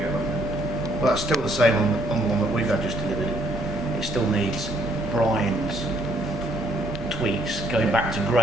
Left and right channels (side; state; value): both; normal; correlation 0.67